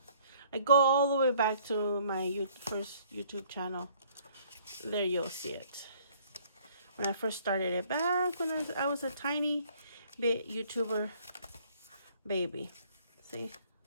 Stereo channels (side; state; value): both; inverted; correlation -0.60